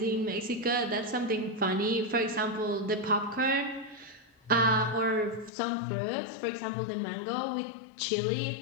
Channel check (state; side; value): drops out; right; at 5.5 s